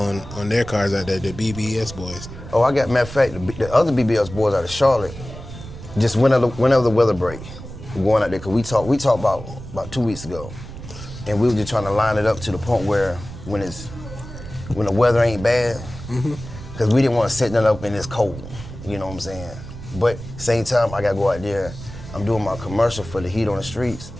their cars out there, the BBS boys? Oh, matter of fact, the other BBS boys out of Charlotte, just whenever the weather break, we're going out there, because we talked about 2 weeks ago, and we were just trying to line it up to the point where when the weather ain't bad, because we didn't want to set that up in this cold, you know what I'm saying? But same time, I got to go out there. I'm doing my commercial for the Heat on the Streets,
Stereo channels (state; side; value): noise; right; rumble, 13 dB below the sound